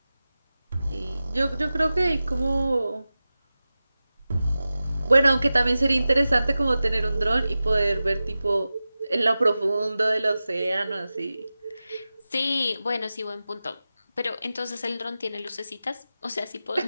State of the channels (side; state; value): both; inverted; correlation -0.95